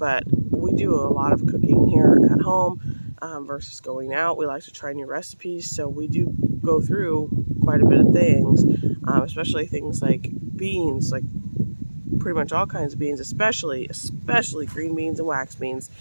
we do a lot of cooking here at home versus going out. We like to try new recipes, so we do go through quite a bit of things, especially things like beans, like pretty much all kinds of beans, especially green beans and wax beans.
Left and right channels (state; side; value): inverted; both; correlation -1.00